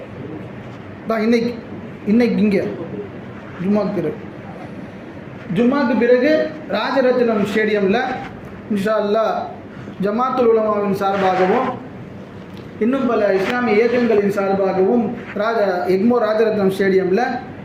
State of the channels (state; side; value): identical; both; correlation 1.00